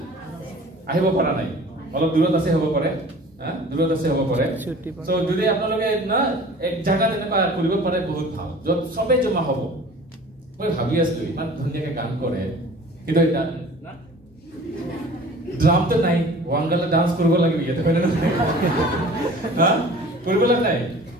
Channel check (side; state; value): both; normal; correlation 0.45